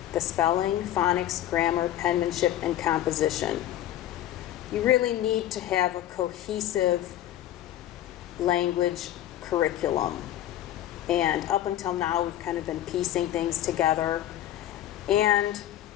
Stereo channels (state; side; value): quieter; right; 12.6 dB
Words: spelling, phonics, grammar, penmanship, and composition. You really need to have a cohesive language curriculum. And up until now, we've kind of been piecing things together. And